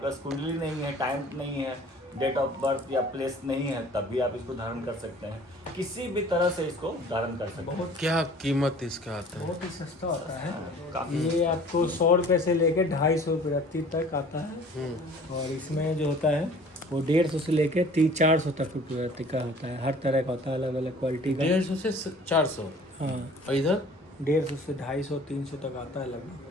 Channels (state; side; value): normal; both; correlation 0.49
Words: कुंडली नहीं है, टाइम नहीं है, डेट ऑफ बर्थ या प्लेस नहीं है, तब भी आप इसको धारण कर सकते हैं। किसी भी तरह से इसको धारण कर सकते हैं। क्या कीमत इसका आता है? बहुत ही सस्ता होता है। काफी ये आपको 100 रुपये से लेके 250 रुपये तक आता है। और इसमें जो होता है वो 150 से लेके 300-400 तक रुपये का होता है। हर तरह का होता है, अलग अलग क्वालिटी का। 150 से 400। हाँ, और इधर 150 से 250-300 तक आता है लगभग।